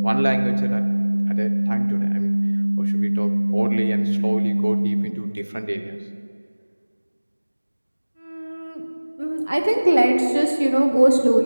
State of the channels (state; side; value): inverted; both; correlation -1.00